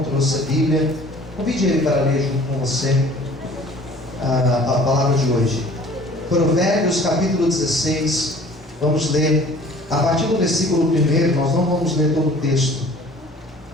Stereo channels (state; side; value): normal; both; correlation 0.50